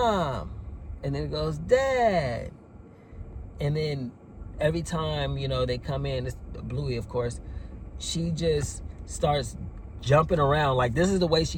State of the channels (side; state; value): both; identical; correlation 1.00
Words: and then it goes, Dad. And then every time, they come in, it's Bluey, of course, she just starts jumping around. Like, this is the way